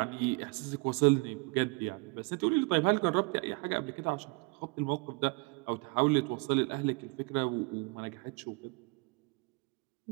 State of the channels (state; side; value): quieter; left; 29.7 dB